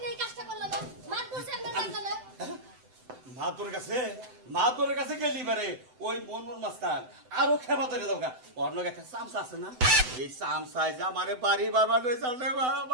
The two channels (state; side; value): late; left; 8.0 ms